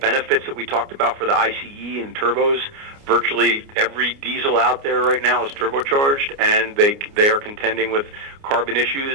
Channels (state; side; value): late; left; 29 ms